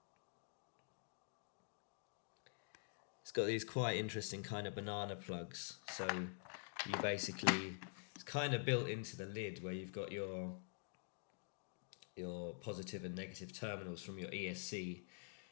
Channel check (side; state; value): right; silent; digital silence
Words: It's got these quite interesting kind of banana plugs. So you basically, it's kind of built into the lid, where you've got your positive and negative terminals from your ESC.